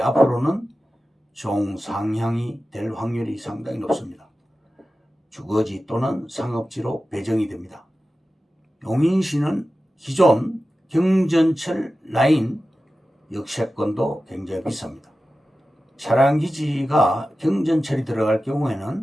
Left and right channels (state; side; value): normal; both; correlation 0.94